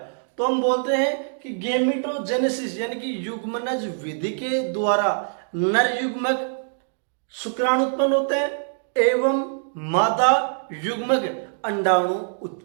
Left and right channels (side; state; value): left; silent; digital silence